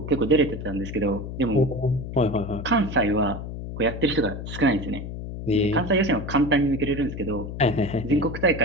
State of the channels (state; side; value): noise; left; hum, 8 dB below the sound